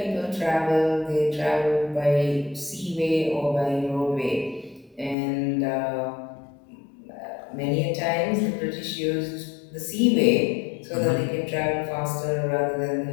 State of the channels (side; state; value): right; drops out; at 5.2 s